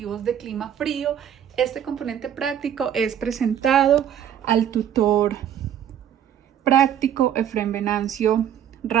de clima frío. Este componente práctico es presentado al tutor práctico Efrén Venancio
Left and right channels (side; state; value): left; quieter; 9.7 dB